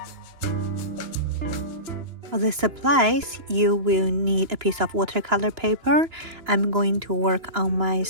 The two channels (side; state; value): left; late; 2.9 ms